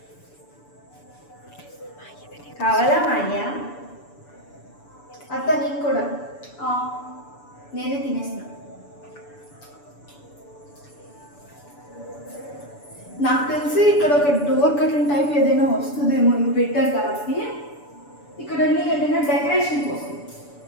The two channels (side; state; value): right; late; 6.9 ms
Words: కావాలా మాయ్యా? అత్త నీకు కూడా? నేనే తినేసిన. నాకు తెలిసి ఇక్కడ ఒక డోర్ కర్టన్ టైప్ ఏదైనా వస్తుందేమో, ఇవి పెట్టారు కాబట్టి. ఇక్కడ ఏదైనా డెకరేషన్ కోసం